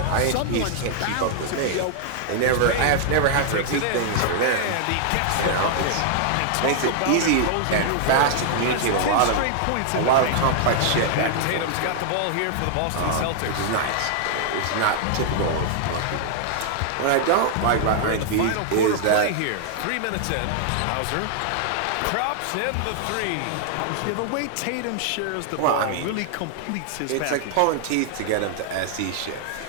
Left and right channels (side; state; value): both; different; correlation 0.00